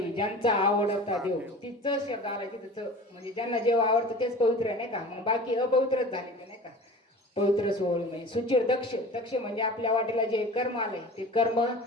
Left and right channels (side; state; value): both; normal; correlation 0.38